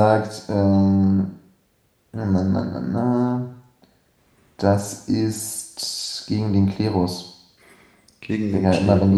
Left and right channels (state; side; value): identical; both; correlation 1.00